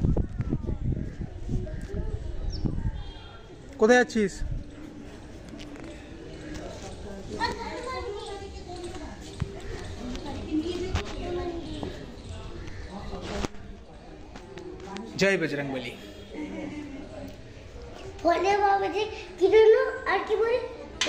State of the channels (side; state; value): both; identical; correlation 1.00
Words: কোথায় যাচ্ছিস? জয় বজরংবলী। বলে বাবা যে কি হলো আর কি বলে